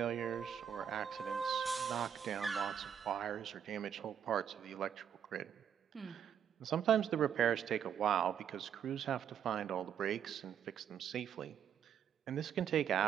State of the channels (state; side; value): quieter; left; 8.6 dB